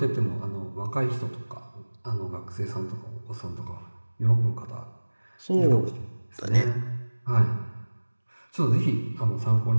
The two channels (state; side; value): inverted; both; correlation -1.00